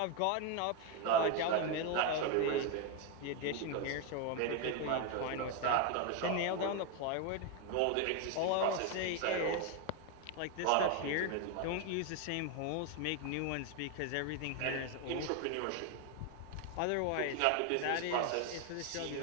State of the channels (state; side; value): different; both; correlation 0.01